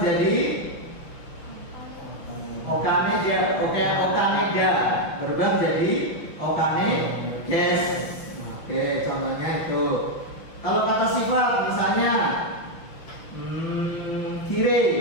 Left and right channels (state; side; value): late; right; 5.9 ms